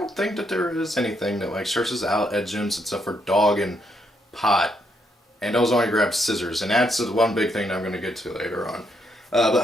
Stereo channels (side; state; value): both; normal; correlation 0.76